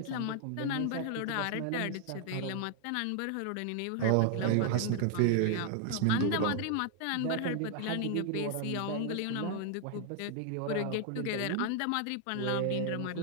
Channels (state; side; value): different; both; correlation 0.00